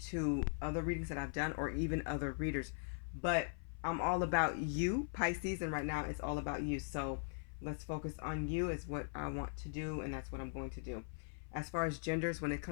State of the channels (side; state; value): right; silent; 51 dB below the other